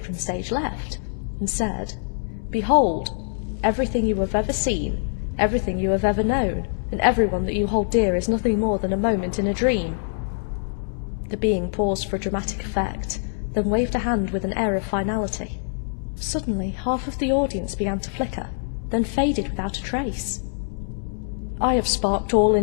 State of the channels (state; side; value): silent; right; 62 dB below the other